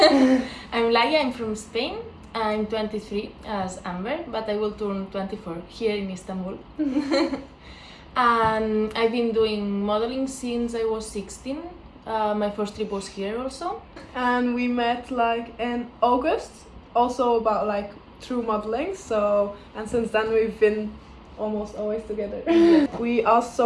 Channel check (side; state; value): both; identical; correlation 1.00